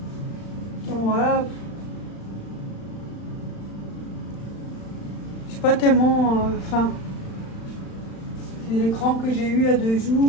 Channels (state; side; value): late; right; 35 ms